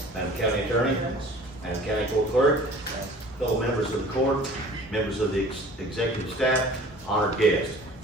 Madam County Attorney. Madam County Court Clerk. Fellow members of the court, members of the executive staff, honored guests.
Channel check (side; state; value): both; normal; correlation 0.47